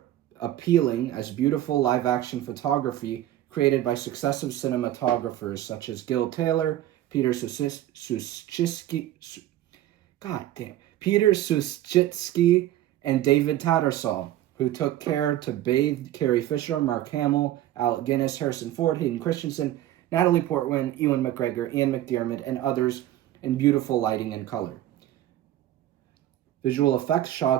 appealing as beautiful live-action photography created by successive cinematographers such as Gil Taylor, Peter Suschitsky, and David Tattersall, who took care to bathe Carrie Fisher, Mark Hamill, Alec Guinness, Harrison Ford, Hayden Christensen, Natalie Portman, Ewan McGregor, Ian McDiarmid, and others in beautiful lighting and color. Visual effects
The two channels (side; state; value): left; quieter; 13.5 dB